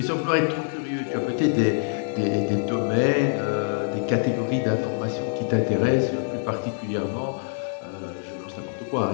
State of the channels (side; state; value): right; silent; digital silence